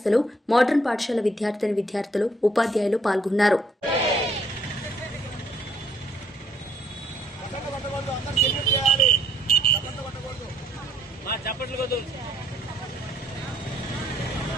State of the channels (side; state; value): both; normal; correlation 0.66